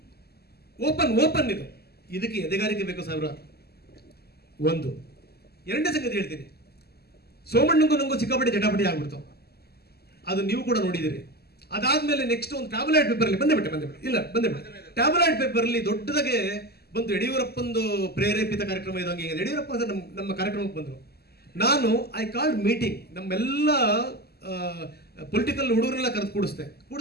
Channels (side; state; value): right; late; 0.46 ms